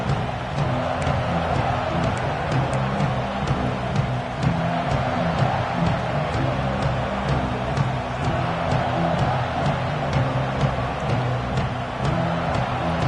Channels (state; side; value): identical; both; correlation 1.00